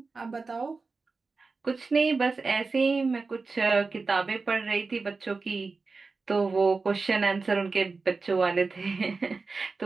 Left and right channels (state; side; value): quieter; left; 4.1 dB